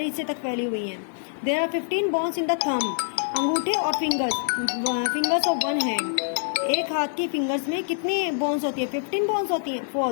हिस्से तक फैली हुई हैं। There are 15 bones in the thumb, अंगूठे और फिंगर्स ऑफ वन हैंड, एक हाथ की फिंगर्स में कितनी बोन्स होती है, 15 बोन्स होती हैं,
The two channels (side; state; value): right; silent; digital silence